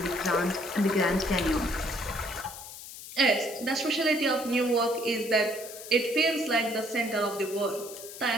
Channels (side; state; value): left; noise; hiss, 13 dB below the sound